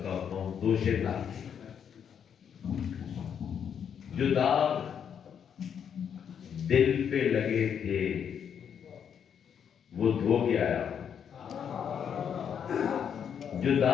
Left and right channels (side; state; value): right; quieter; 8.0 dB